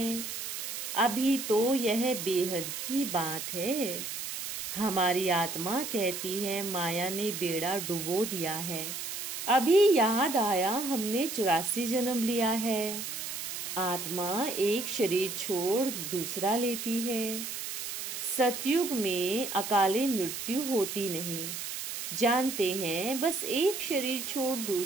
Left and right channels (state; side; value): noise; right; hiss, 6 dB below the sound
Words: अभी तो यह बेहद की बात है। हमारी आत्मा कहती है माया ने बेड़ा डुबो दिया है। अभी याद आया हमने 84 जन्म लिया है। आत्मा एक शरीर छोड़ दूसरा लेती है। सतयुग में अकाले मृत्यु होती नहीं। जानते हैं बस एक शरीर छोड़